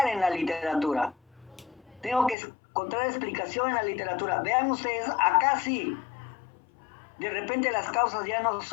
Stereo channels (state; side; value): drops out; right; at 2.4 s